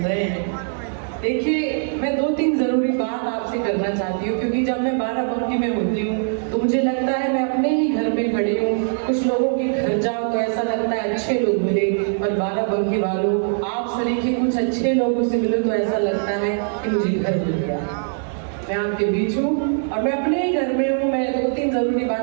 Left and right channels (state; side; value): silent; left; digital silence